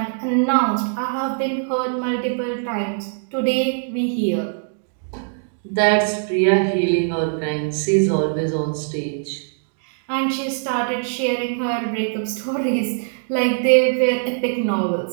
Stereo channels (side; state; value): left; silent; digital silence